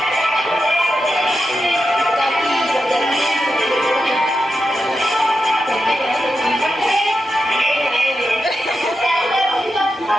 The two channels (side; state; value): both; normal; correlation 0.88